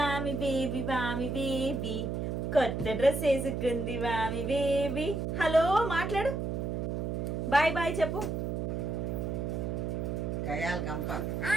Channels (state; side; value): noise; right; hum, 2 dB below the sound